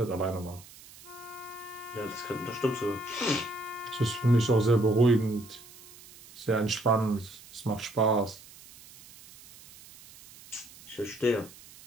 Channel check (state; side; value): noise; right; hiss, 20 dB below the sound